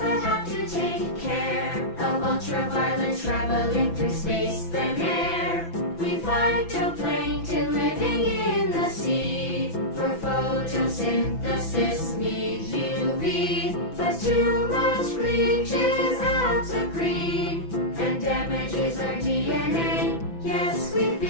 have to take care of ultraviolet traveling through space than air. We phytoplankton living in the sea for photosynthesis need UV, but too much bleaches out the green and damages our DNA. Yes, we've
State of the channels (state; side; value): late; right; 6.0 ms